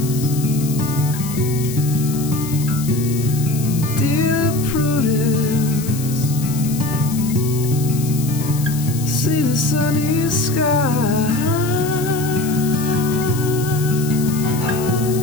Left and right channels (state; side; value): noise; left; hiss, 11 dB below the sound